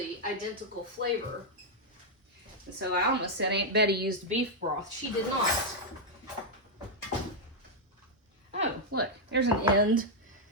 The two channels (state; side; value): normal; both; correlation -0.03